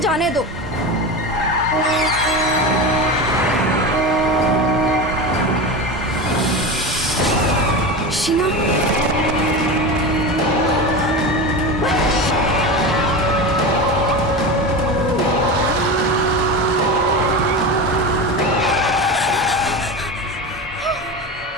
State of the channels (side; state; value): both; normal; correlation 0.24